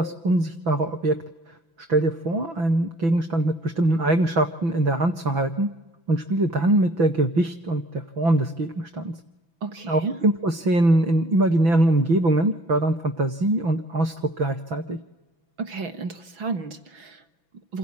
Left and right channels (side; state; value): left; late; 6.0 ms